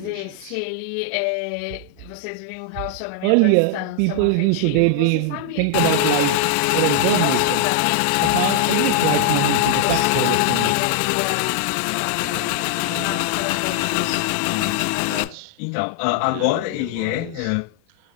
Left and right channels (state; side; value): different; both; correlation 0.00